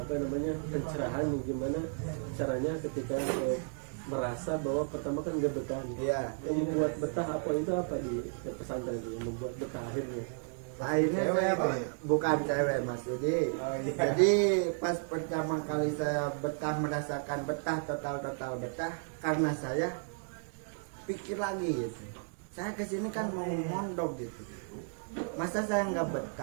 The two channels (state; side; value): silent; left; 55 dB below the other